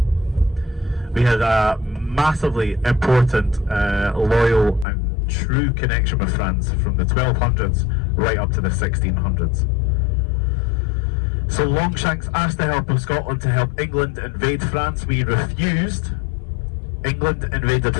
We had a massively important, loyal and true connection with France from the 1200s right up to the 1600s. So Longshanks asked the help of Scotland to help England invade France. We refused. England invaded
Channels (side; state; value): right; drops out; at 4.9 s